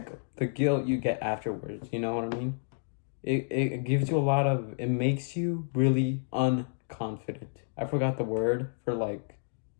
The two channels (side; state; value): right; silent; digital silence